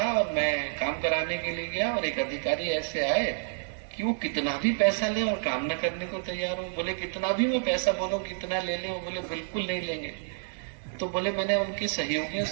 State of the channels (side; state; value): left; silent; 59 dB below the other